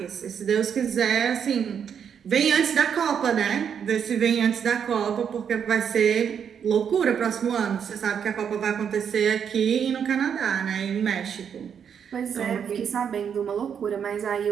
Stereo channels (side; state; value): left; quieter; 7.7 dB